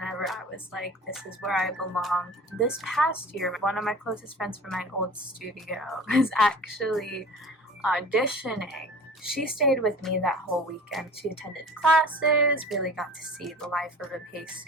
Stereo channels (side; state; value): both; normal; correlation 0.41